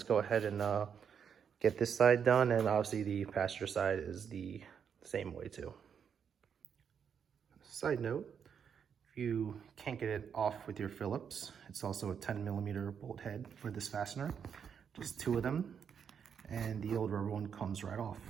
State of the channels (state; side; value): quieter; left; 7.4 dB